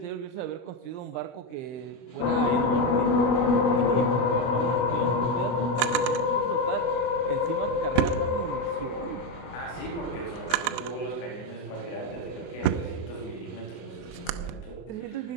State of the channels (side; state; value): right; late; 24 ms